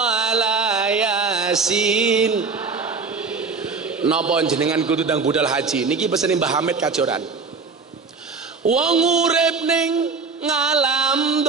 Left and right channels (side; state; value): left; quieter; 4.7 dB